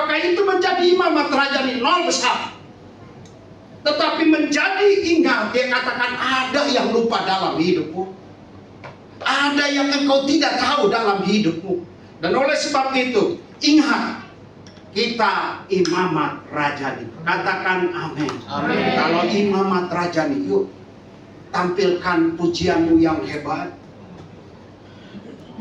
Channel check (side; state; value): both; identical; correlation 1.00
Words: itu menjadi imamat rajani? Nol besar. Tetapi menjadi ingat, dia katakan ada yang lupa dalam hidupmu. Ada yang engkau tidak tahu dalam hidupmu. Dan oleh sebab itu, ingat, Kita imamat rajani. Katakan amin. Amin. Kalau imamat rajani, yuk tampilkan pujianmu yang hebat.